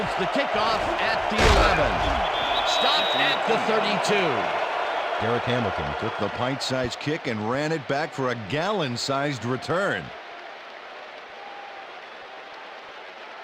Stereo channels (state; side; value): identical; both; correlation 1.00